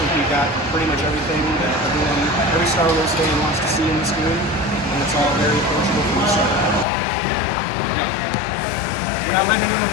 think we got pretty much everything that every Star Wars fan wants to see in this game, and it's all very approachable from the start. Yeah. We're not letting anyone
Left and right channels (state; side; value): drops out; right; at 6.9 s